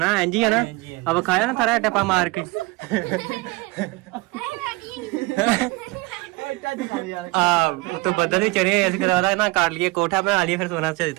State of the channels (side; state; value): left; quieter; 24.2 dB